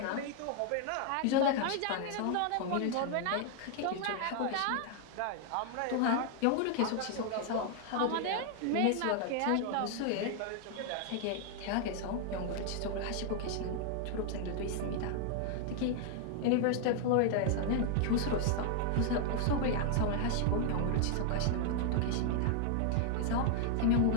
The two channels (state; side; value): different; both; correlation 0.00